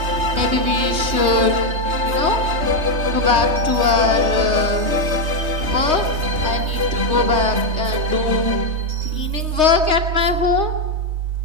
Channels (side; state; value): left; late; 3.2 ms